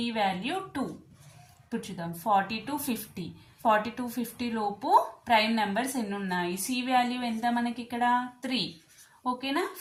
వాల్యూ 2. ఇప్పుడు చూద్దాం 40 to 50. 40 to 50 లోపు ప్రైమ్ నెంబర్స్ ఎన్ని ఉన్నాయి? సి వాల్యూ ఎంత మనకి? ఇక్కడ 3. ఓకేనా?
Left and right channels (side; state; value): both; identical; correlation 1.00